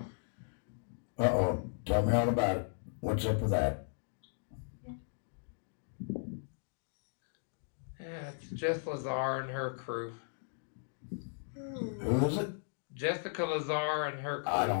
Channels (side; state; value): right; silent; digital silence